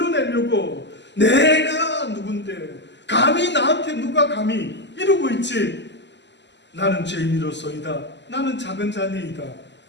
내가 누군데 감히 나한테 누가 감히 이러고 있지. 나는 죄인이로소이다. 나는 작은 자니이다.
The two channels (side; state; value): right; late; 0.51 ms